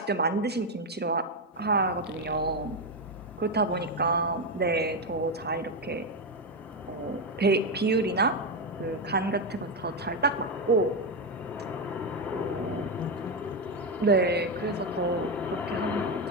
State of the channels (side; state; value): both; normal; correlation 0.08